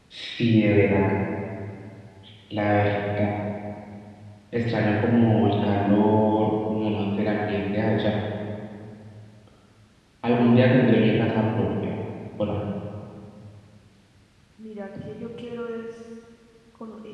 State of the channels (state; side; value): identical; both; correlation 1.00